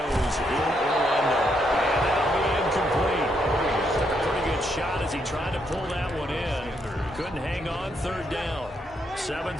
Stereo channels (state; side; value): normal; both; correlation 0.76